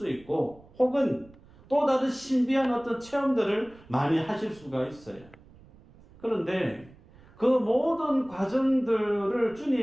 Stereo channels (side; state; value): right; noise; rumble, 25 dB below the sound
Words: 있고 혹은 또 다른 신비한 어떤 체험들을 많이 하실 수가 있어요. 그런데 그 모든 과정들을